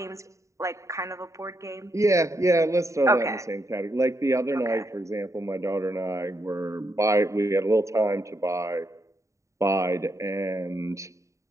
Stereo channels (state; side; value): late; left; 0.15 ms